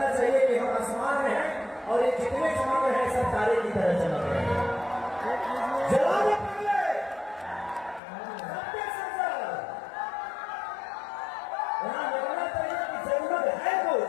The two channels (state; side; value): drops out; right; at 8.0 s